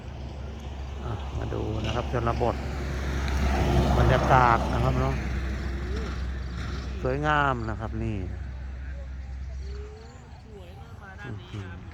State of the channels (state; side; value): identical; both; correlation 1.00